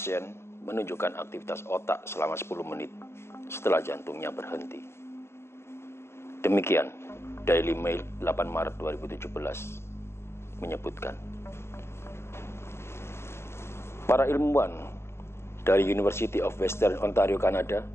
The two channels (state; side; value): late; right; 0.12 ms